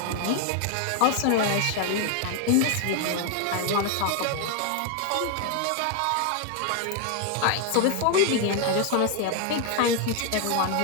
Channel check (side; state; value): both; different; correlation 0.01